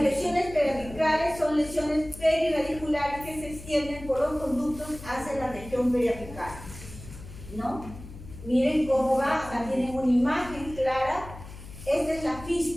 lesiones periapicales son lesiones periradiculares que se extienden por los conductos hacia la región periapical, ¿no? Miren cómo va, acá tienen una imagen clara. Esta es la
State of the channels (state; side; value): noise; left; hum, 15 dB below the sound